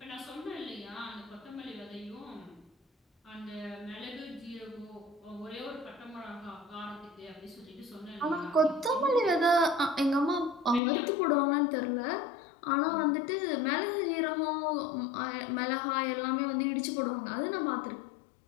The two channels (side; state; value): right; drops out; at 10.8 s